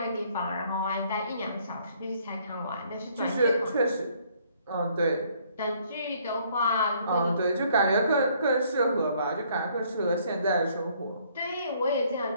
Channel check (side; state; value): both; inverted; correlation -0.63